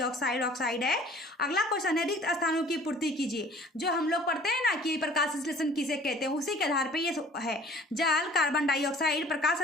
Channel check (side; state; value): both; normal; correlation 0.51